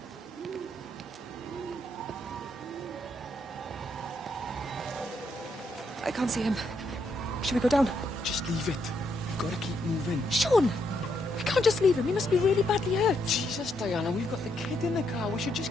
I can't see him. Should we go down? Just leave it. We've got to keep moving. Sean! We can't just leave him. He must be really badly hurt. Jesus, Diana, we've got the kid in the car. We should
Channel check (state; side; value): normal; both; correlation 0.77